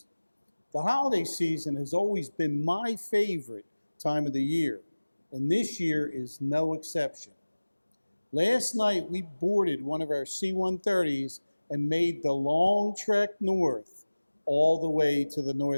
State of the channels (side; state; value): both; inverted; correlation -1.00